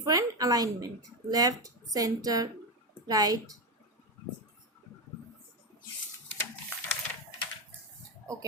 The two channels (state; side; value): normal; both; correlation 0.12